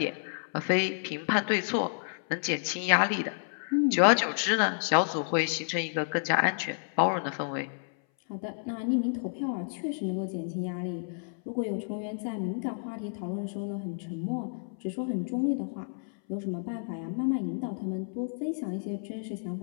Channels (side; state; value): right; silent; 58 dB below the other